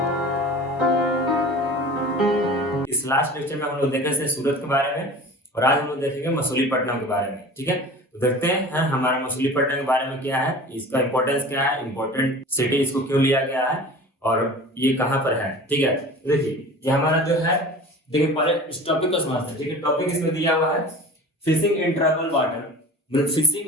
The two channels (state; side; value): normal; both; correlation 0.40